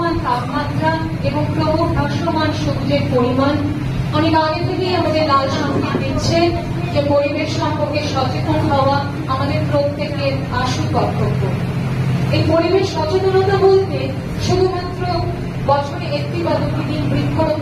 তাপমাত্রা এবং ক্রমহ্রাসমান সূর্যের পরিমাণ অনেক আগে থেকেই আমাদের লাল সংকেত দিচ্ছে যে পরিবেশ সম্পর্কে সচেতন হওয়া আমাদের প্রত্যেকের আশু কর্তব্য। এই পরিবেশ সচেতনতা বলতে শুধুমাত্র বছরে একটি বা দুটি দিন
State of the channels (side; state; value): both; identical; correlation 1.00